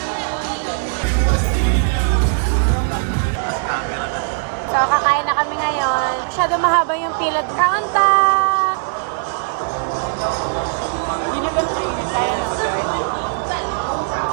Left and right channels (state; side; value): silent; left; 66 dB below the other